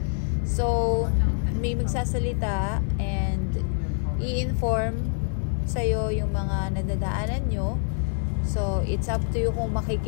So, may magsasalita and i-inform sa'yo yung mga nadadaanan nyo. So, it's up to you kung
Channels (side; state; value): right; silent; 61 dB below the other